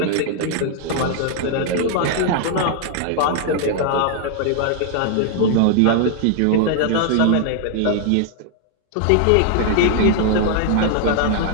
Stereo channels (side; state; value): both; different; correlation 0.00